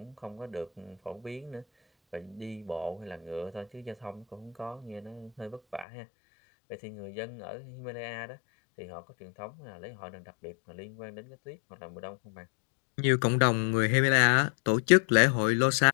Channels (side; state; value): right; drops out; at 5.9 s